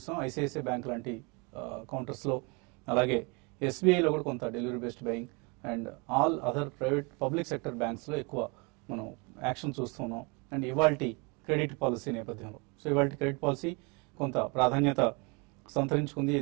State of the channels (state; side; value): quieter; left; 30.7 dB